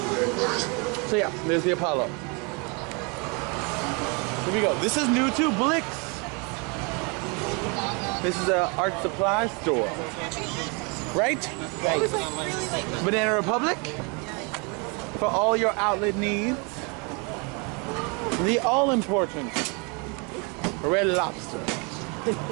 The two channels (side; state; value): left; quieter; 32.1 dB